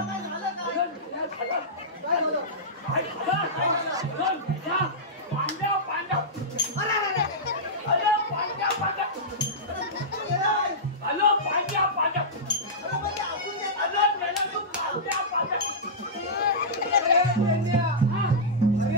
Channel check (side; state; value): both; normal; correlation -0.13